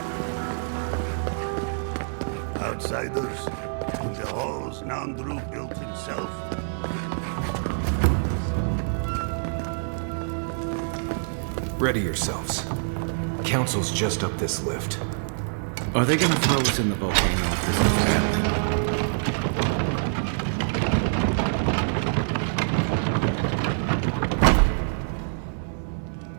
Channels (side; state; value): left; silent; 61 dB below the other